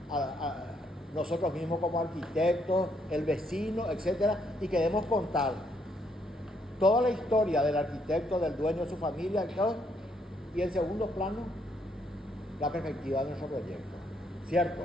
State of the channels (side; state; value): both; normal; correlation 0.72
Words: a nosotros mismos como arquitectos, el vecino, etcétera, y queremos contar toda la historia del arquitecto, del dueño de su familia, y en segundo plano, la perspectiva de nuestro proyecto, ¿cierto?